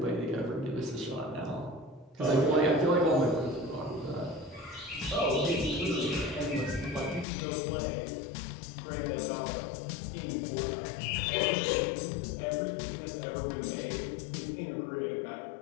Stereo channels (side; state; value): right; drops out; at 7.2 s